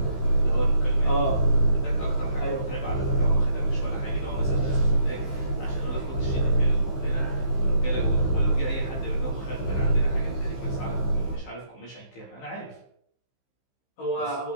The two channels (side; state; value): right; late; 15 ms